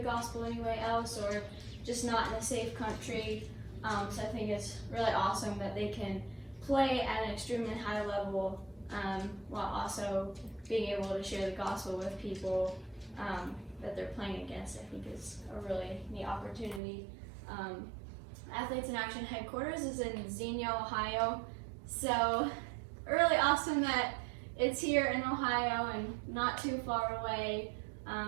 gospel anywhere else, or just not in a safe country. So I think it's really awesome that they can play at an extremely high level, while also being able to share the gospel with people that they're playing against. I think is a really neat opportunity. Athletes in Action headquarters is in Xenia, Ohio. So really awesome that it's here in Ohio and not too far away.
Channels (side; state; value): left; drops out; at 16.8 s